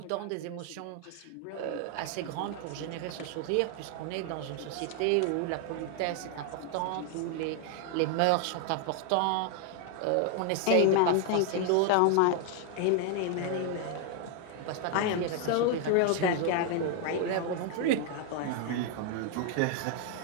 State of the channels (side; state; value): both; different; correlation 0.00